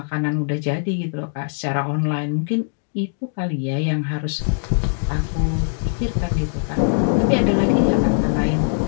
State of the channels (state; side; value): silent; right; digital silence